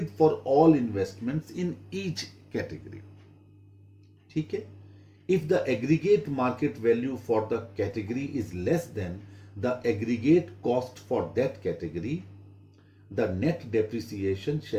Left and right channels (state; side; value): identical; both; correlation 1.00